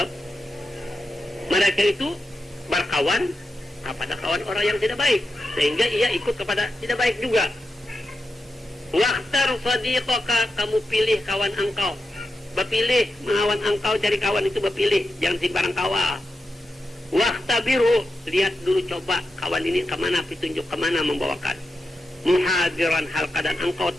mereka itu berkawan kepada kawan orang yang tidak baik, sehingga ia ikut kepada tidak baik juga. Waqtar sadiqaka, kamu pilih kawan engkau. Bepilih mengawan engkau, cari kawan itu bepilih, jangan sembarang kawan. Waqtabiru, lihat dulu, coba kawan ini kemana, petunjuk kemana membawakan. Muhadiran, hal keadaan engkau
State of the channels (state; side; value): normal; both; correlation 0.89